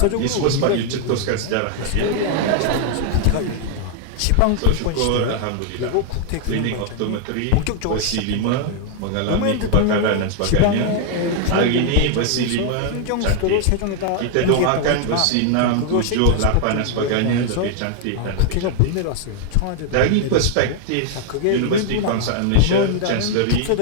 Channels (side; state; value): both; different; correlation 0.00